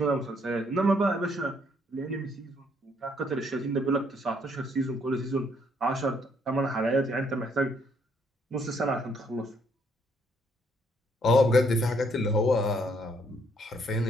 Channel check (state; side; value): normal; both; correlation 0.69